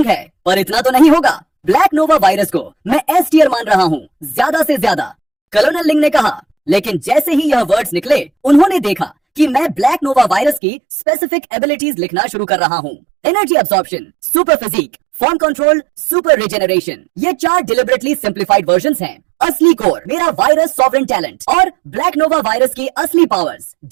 है, पर इतना तो नहीं होगा। ब्लैक नोवा वायरस को मैं एस टियर मान रहा हूँ, ज्यादा से ज्यादा। कर्नल लिंग ने कहा। लेकिन जैसे ही यह वर्ड्स निकले, उन्होंने देखा कि मैं ब्लैक नोवा वायरस की स्पेसिफिक एबिलिटीज लिखना शुरू कर रहा हूँ। Energy absorption, super physique, form control, super regeneration, ये 4 डिलिबरेटली सिंप्लीफाइड वर्जन्स हैं। असली कोर मेरा वायरस सॉवरेन टैलेंट और ब्लैक नोवा वायरस की असली पावर्स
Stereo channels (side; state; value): left; drops out; at 10.6 s